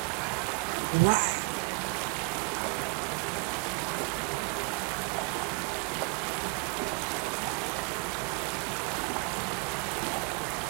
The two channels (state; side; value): quieter; left; 34.0 dB